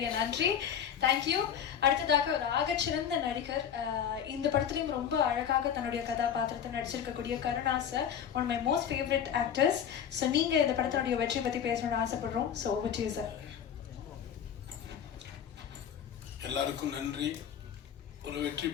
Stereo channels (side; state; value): right; quieter; 8.6 dB